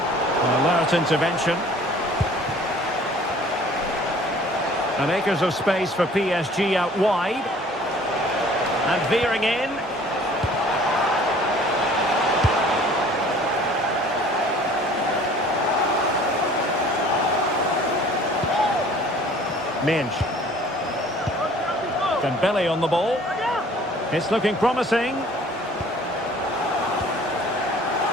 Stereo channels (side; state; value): both; normal; correlation 0.51